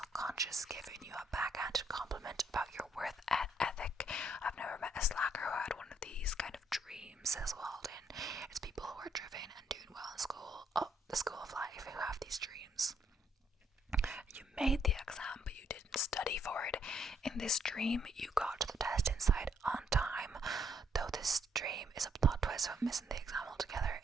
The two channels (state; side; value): normal; both; correlation 0.71